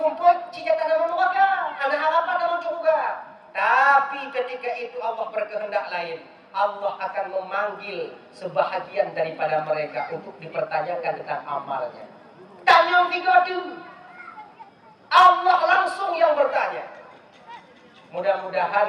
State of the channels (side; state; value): both; identical; correlation 1.00